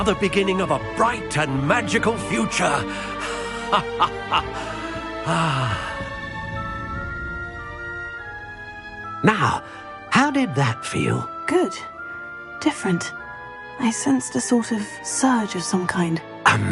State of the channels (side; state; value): both; identical; correlation 1.00